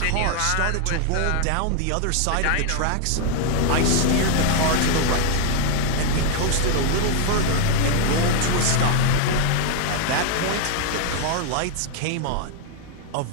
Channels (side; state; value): both; different; correlation 0.00